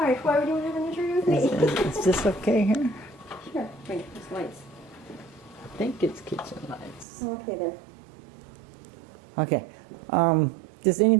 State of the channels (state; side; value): drops out; left; at 7.1 s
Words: Why would you want to have an interview with me? Is this okay here? Sure. Bring those lights. I think it's kitchen lights. Okay, there. Okay. Just